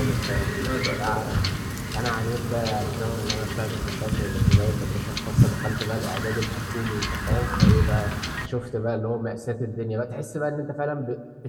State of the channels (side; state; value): both; identical; correlation 1.00